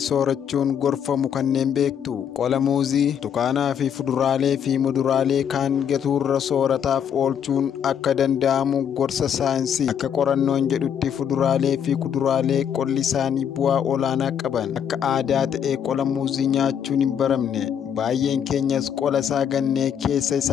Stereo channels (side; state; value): right; quieter; 8.4 dB